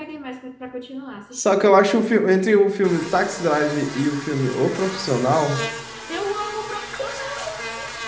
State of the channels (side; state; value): both; identical; correlation 1.00